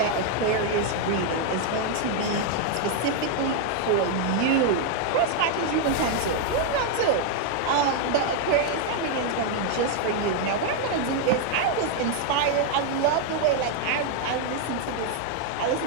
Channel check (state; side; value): different; both; correlation 0.00